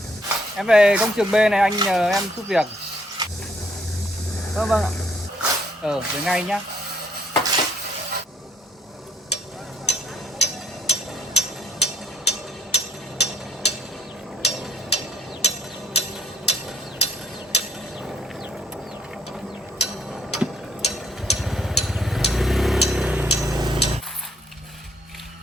Em về công trường B này anh nhờ em giúp việc. Vâng ạ. Về ngay nhá.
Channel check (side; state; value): both; normal; correlation 0.67